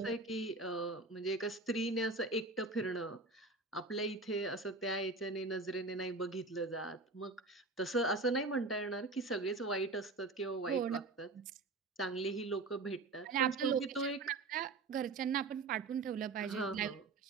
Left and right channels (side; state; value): left; quieter; 3.6 dB